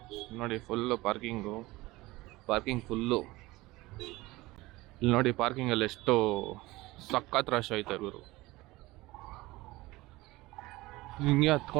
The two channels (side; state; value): left; quieter; 20.0 dB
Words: ನೋಡಿ ಫುಲ್ಲು ಪಾರ್ಕಿಂಗ್ ಫುಲ್ಲು. ಇಲ್ಲಿ ನೋಡಿ ಪಾರ್ಕಿಂಗಲ್ಲಿ ಎಷ್ಟು ಸಖತ್ ರಶ್ ಐತೆ ಗುರು. ಹಿಂಗೆ